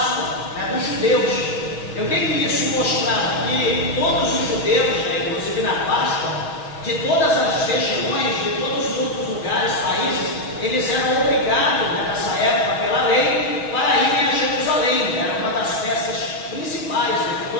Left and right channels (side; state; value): right; late; 6.3 ms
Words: dos judeus. E o que isso mostrava? Que todos os judeus, inclusive na Páscoa, de todas as regiões, de todos os outros lugares, países, eles eram obrigados, nessa época, pela lei, para irem a Jerusalém. Era uma das festas principais, que